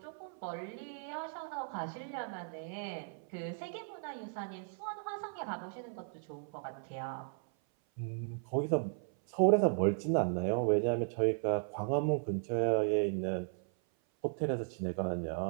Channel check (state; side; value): silent; left; 54 dB below the other